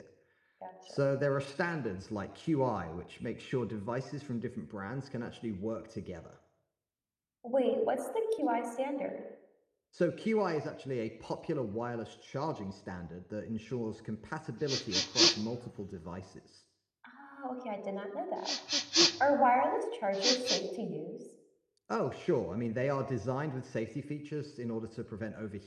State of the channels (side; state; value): both; identical; correlation 1.00